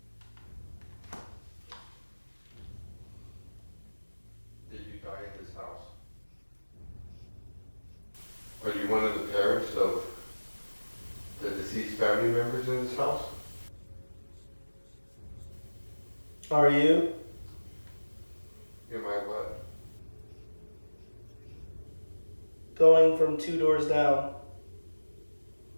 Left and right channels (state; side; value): inverted; both; correlation -1.00